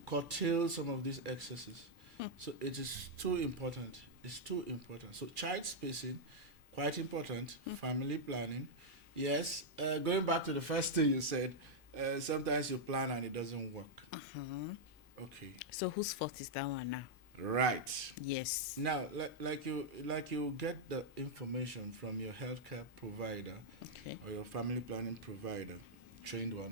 curtail some of these excesses. So it is too important. It's too important. So child spacing, quite important. Family planning. Yes, going back to the first thing you said, sometimes you plan and it doesn't work. Okay. So whose fault is that one now? Right. Yes. Now, like you get the information from your healthcare provider Okay. or your family planning provider. trained one,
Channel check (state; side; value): normal; both; correlation -0.04